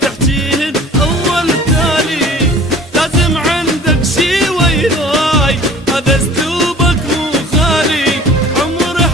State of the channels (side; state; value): both; normal; correlation 0.46